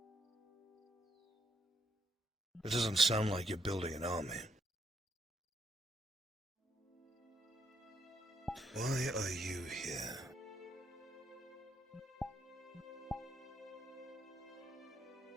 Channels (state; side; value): normal; both; correlation 0.75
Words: It doesn't sound like you're building an army. Why are you here?